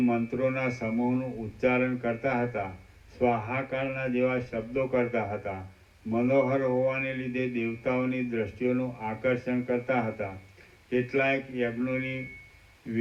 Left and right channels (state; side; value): identical; both; correlation 1.00